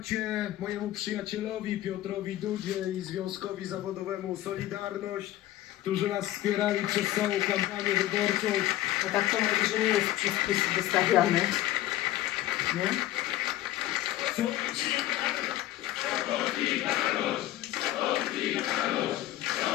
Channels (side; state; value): right; quieter; 14.4 dB